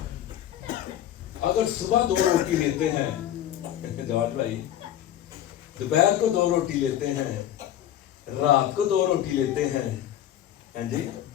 अगर सुबह 2 रोटी लेते हैं जवाब भाई, दोपहर को 2 रोटी लेते हैं, रात को 2 रोटी लेते हैं, हैं जी,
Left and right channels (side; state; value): right; quieter; 11.5 dB